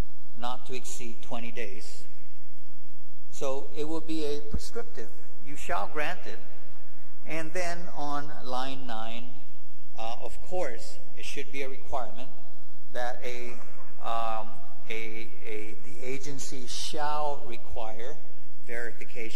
not to exceed 20 days. So it will be a prescriptive. You shall grant it. And then on line 9, of course, it should be a requirement that the agency shall require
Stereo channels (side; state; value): both; identical; correlation 1.00